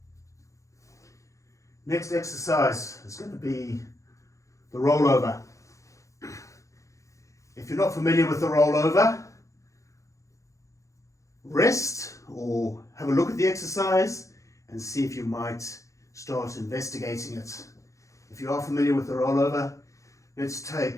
Next exercise is going to be the rollover. If you're not familiar with the rollover, rest or have a look at the exercise and see if you might start investigating it. If you are familiar with the rollover, let's take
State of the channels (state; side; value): late; right; 0.15 ms